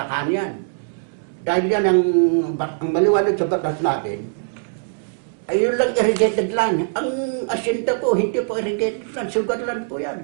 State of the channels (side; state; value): left; silent; digital silence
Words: yan. Dahil yan ang maliwanag sa batas natin, ay yun lang irrigated land. Ang asyenda po, hindi po irrigated land, sugar land po